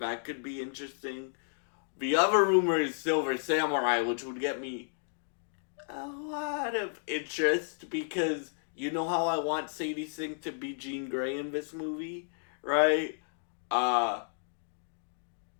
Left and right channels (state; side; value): silent; right; digital silence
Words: could be interesting. The other rumor is Silver Samurai, which would get me a lot of interest because you know how I want Sadie Sink to be Jean Grey in this movie, right?